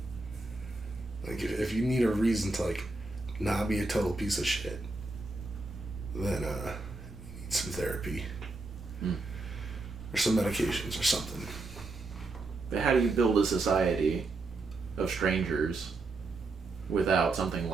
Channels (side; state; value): left; quieter; 3.3 dB